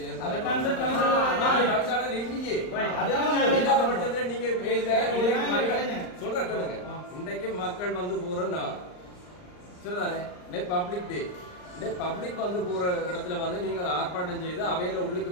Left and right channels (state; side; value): late; right; 39 ms